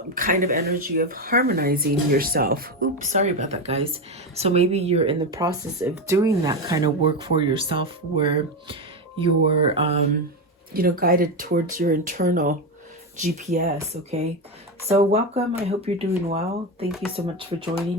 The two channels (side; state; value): both; normal; correlation 0.13